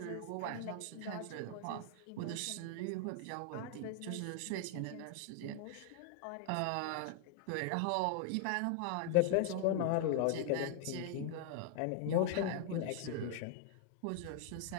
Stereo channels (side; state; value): both; different; correlation 0.00